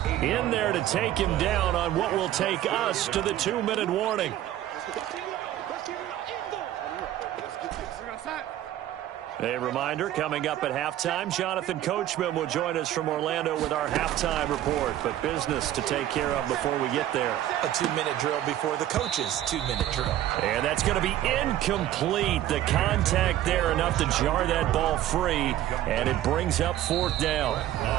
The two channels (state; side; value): quieter; left; 12.8 dB